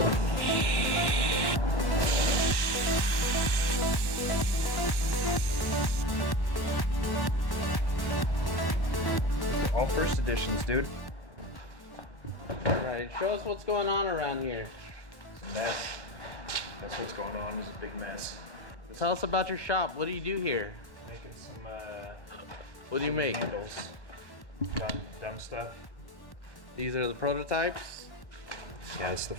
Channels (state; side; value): late; right; 1.1 ms